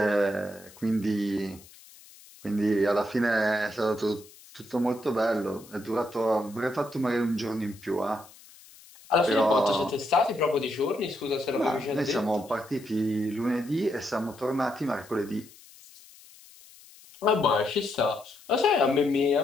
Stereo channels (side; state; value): left; noise; hiss, 23 dB below the sound